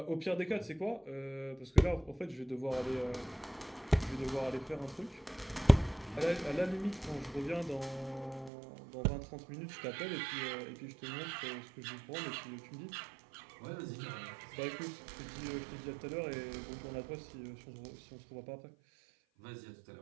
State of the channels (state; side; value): drops out; left; at 8.5 s